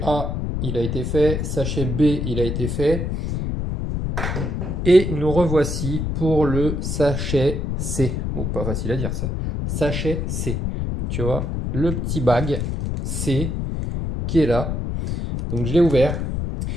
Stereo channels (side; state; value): left; noise; rumble, 2 dB below the sound